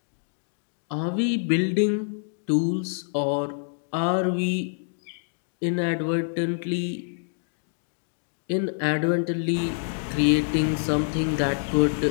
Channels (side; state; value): right; silent; digital silence